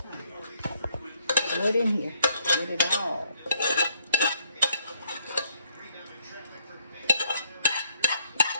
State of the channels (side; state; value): both; inverted; correlation -0.68